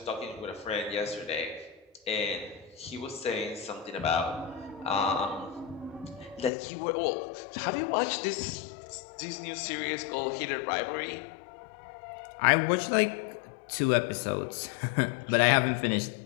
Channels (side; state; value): right; drops out; at 6.5 s